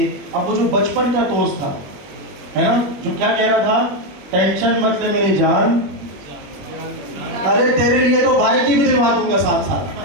अब वो जो बचपन का दोस्त था, है ना, जो क्या कह रहा था, टेंशन मत ले मेरी जान, अरे तेरे लिए तो भाई की भी दिलवा दूंगा साथ साथ,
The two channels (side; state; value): left; late; 20 ms